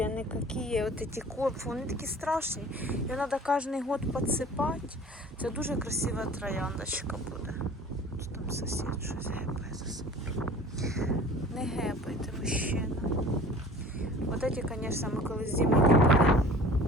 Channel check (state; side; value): normal; both; correlation 0.45